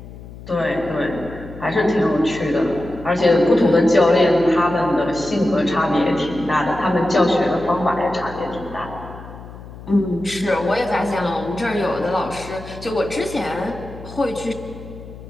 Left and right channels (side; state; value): left; noise; hum, 15 dB below the sound